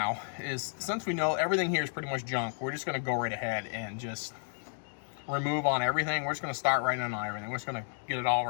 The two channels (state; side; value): silent; right; digital silence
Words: is, since we know everything here is pretty much junk, we're just going to go right ahead and just remove on everything. We're just going to start right on everything. We're just going to get it all